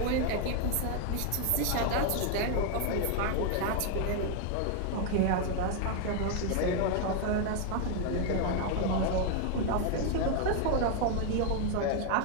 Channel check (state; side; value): different; both; correlation 0.00